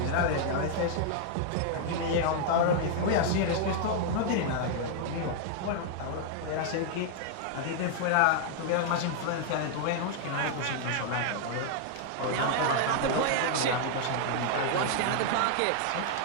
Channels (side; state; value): both; different; correlation 0.00